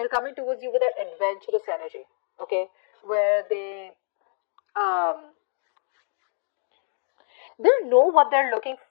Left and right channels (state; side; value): silent; right; digital silence